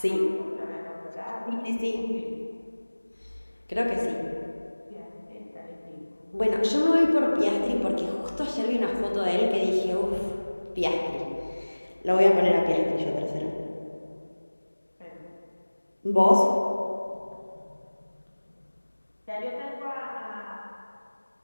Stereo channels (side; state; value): both; inverted; correlation -1.00